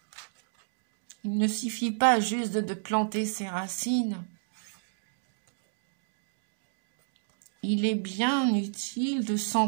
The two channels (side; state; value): left; silent; digital silence